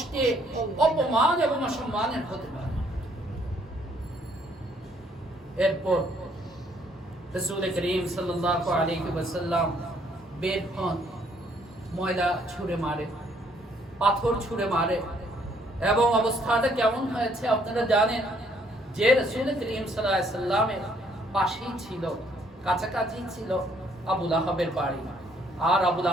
অপমান এবং অসম্মানের হতে পারে। এরপর রাসূল করিম সাল্লাল্লাহু আলাইহি ওয়াসাল্লাম বের হন, ময়লা ছুঁড়ে মারে, পাথর ছুঁড়ে মারে, এবং অবস্থাটা কেমন হয়েছে আপনারা জানেন যে রাসূল করিম সাল্লাল্লাহু আলাইহি ওয়াসাল্লামের পাশেই ছিল, কাছাকাছি ছিল আবু লাহাবের বাড়ি। আর আবু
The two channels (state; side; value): normal; both; correlation 0.66